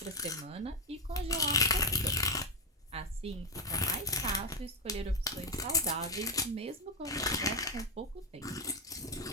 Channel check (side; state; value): both; normal; correlation 0.07